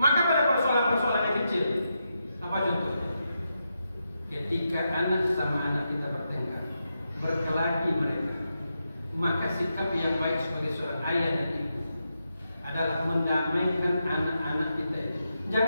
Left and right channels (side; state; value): both; inverted; correlation -0.85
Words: pada persoalan-persoalan yang kecil, apa contohnya? Ketika anak sama anak kita bertengkar, berkelahi mereka, maka sikap yang baik sebagai seorang ayah dan ibu adalah mendamaikan anak-anak kita itu.